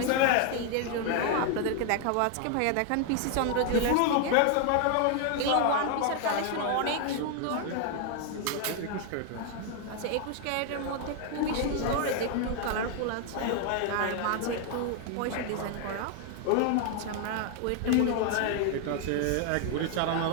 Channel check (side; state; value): both; different; correlation 0.00